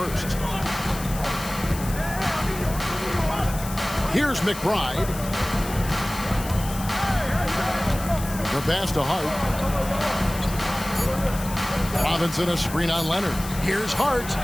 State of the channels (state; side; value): noise; left; hiss, 12 dB below the sound